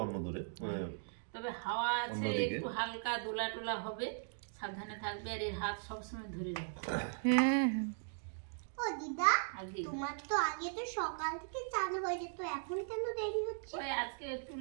অন্য দূরে। তবে হাওয়া আছে, অন্যদিকে। একটু হালকা দোলা টোলা হবে, সাবধানে থাকবে। আর এর হাত সবসময় ধরে রাখবে। হ্যাঁ, ও দিদা, আগে তোমার তো আগে তো সকাল থেকে চালু হয়ে যেত, এখন কেন দেরি হচ্ছে? ওই আজকে একটু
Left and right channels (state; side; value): silent; left; digital silence